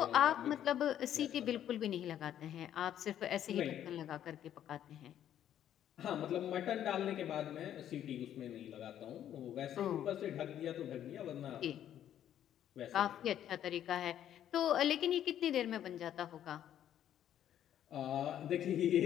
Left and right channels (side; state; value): right; quieter; 10.7 dB